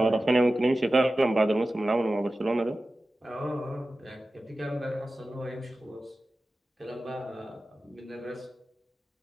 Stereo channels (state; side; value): normal; both; correlation 0.95